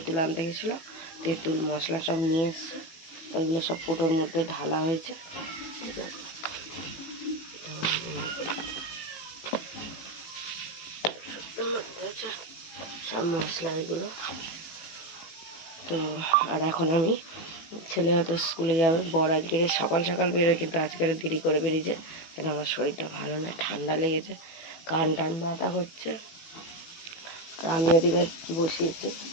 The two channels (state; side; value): late; right; 18 ms